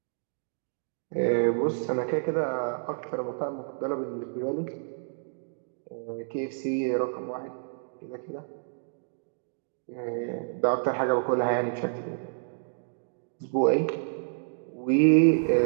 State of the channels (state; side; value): silent; left; digital silence